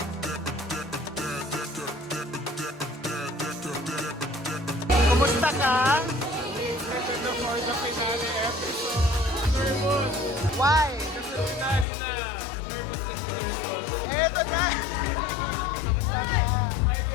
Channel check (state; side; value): drops out; right; at 11.9 s